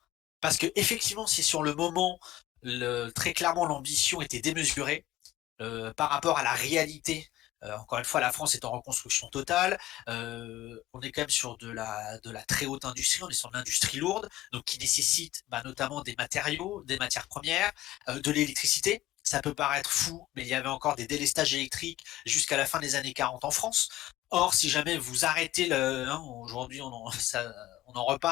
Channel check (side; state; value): right; quieter; 15.2 dB